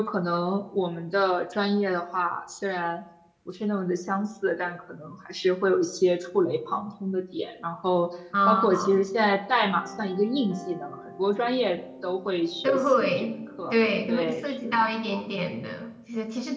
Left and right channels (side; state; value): both; identical; correlation 1.00